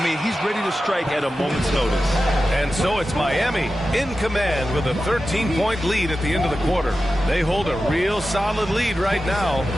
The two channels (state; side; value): normal; both; correlation 0.93